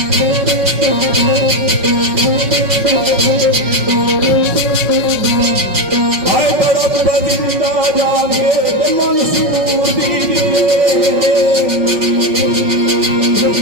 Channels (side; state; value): left; late; 5.5 ms